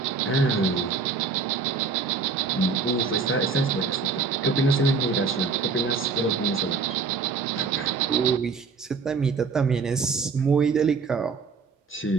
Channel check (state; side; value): quieter; left; 4.8 dB